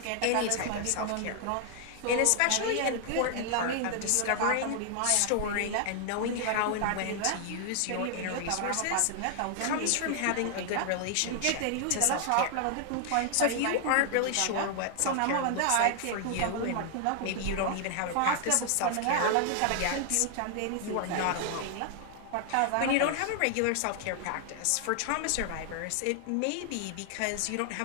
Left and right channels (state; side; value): different; both; correlation 0.00